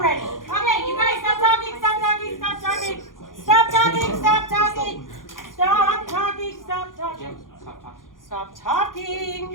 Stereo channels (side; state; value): right; late; 0.90 ms